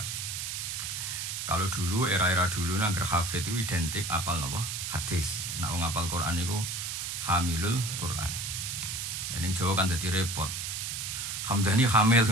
Kalau dulu era-era dulu nangger hafid itu identik apal napa? Hadis. Nek wong apal Quran iku hamilul Quran. Ning Jawa kan dadi repot. Hamdani hamil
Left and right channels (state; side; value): noise; right; hiss, 4 dB below the sound